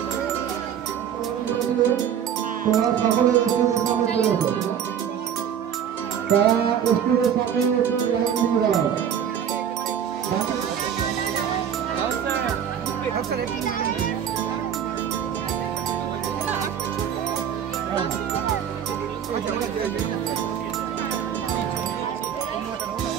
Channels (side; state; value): left; quieter; 8.8 dB